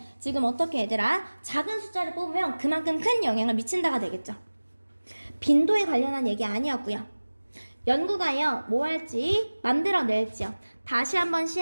지금 어떻게 얘들아? 작은 숫자를 뽑으면 그만큼 큰 영향을 미친다가 되겠죠. 빈도에 관련한 얘기 아니었고요. 연구가요 뭐 할지 만들어낼지요. 다시 한번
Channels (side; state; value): both; inverted; correlation -1.00